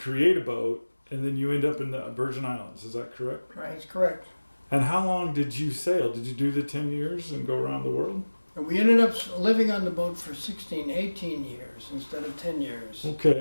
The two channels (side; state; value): both; inverted; correlation -1.00